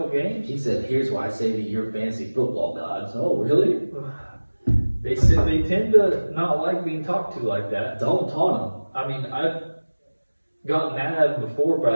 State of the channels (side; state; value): both; inverted; correlation -1.00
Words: games. He said, "Here's why I say to your fantasy football gods." Oh, really? They said they tend to not like being talked to like that. Don't taunt him. I mean, I've gotten mad at them before, but